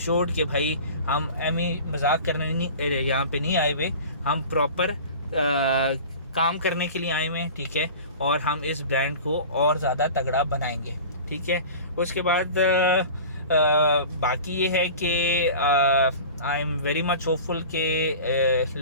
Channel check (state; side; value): inverted; both; correlation -0.38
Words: कि भाई हम मजाक करने यहाँ पे नहीं आए हुए, हम प्रॉपर काम करने के लिए आए हुए हैं, ठीक है। और हम इस ब्रांड को और ज़्यादा तगड़ा बनाएंगे, ठीक है। उसके बाद बाकी ये है कि आई एम वेरी मच होपफुल कि